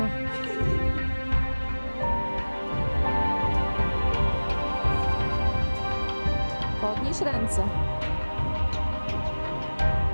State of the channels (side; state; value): both; inverted; correlation -1.00